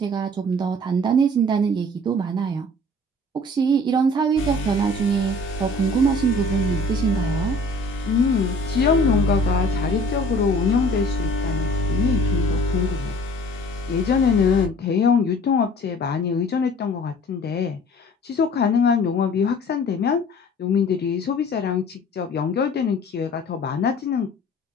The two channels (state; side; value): normal; both; correlation 0.49